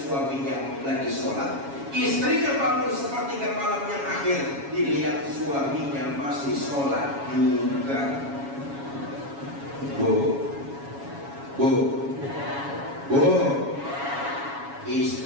lagi sholat. Istrinya bangun sepertiga malam yang akhir, dilihat suaminya masih sholat juga.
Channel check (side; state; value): left; late; 7.2 ms